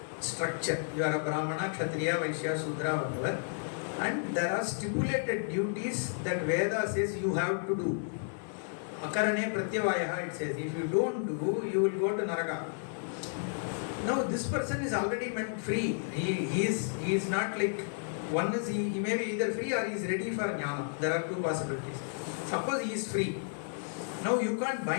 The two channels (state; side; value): silent; right; digital silence